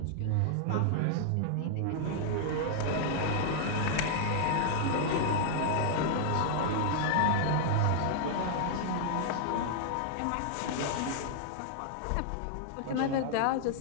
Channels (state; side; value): different; both; correlation 0.00